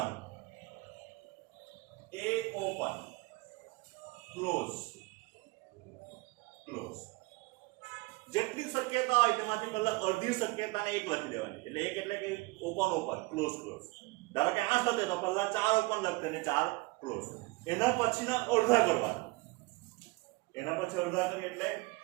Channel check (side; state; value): left; quieter; 24.5 dB